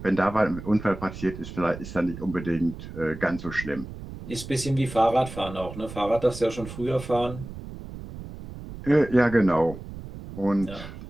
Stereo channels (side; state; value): right; noise; rumble, 12 dB below the sound